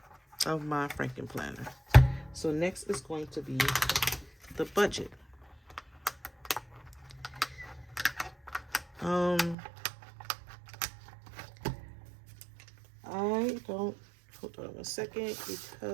of my Frankenplanner. So next is going to be the budget. I don't hold on 1 second,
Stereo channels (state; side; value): drops out; left; at 9.6 s